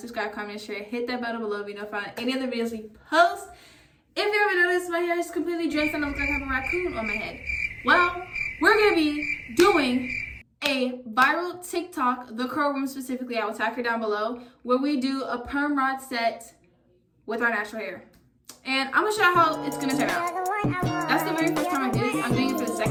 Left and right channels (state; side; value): identical; both; correlation 1.00